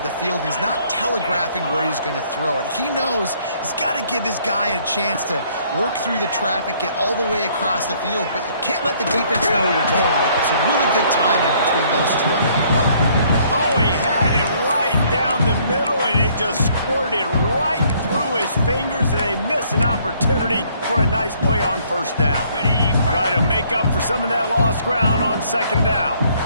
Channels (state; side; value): inverted; both; correlation -0.63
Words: the field. He's not telegraphing where he's going to throw it. He knows he's got to give his guy a chance to work through the traffic, get all the way across the field, but you can't let the defense know where you're going with it. So really good timing between those two on that play. Oh, he had it right down the middle, and it just squirted right through his fingers, and they miss an opportunity for a nice play on first down. Try to make up for some of that lost ground on second down.